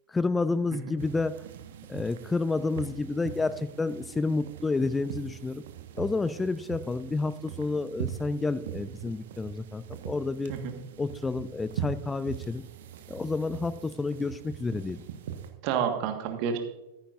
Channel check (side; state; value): both; normal; correlation 0.76